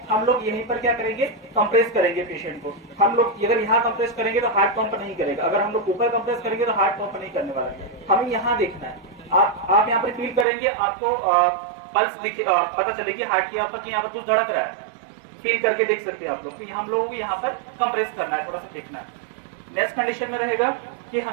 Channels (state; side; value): drops out; left; at 10.5 s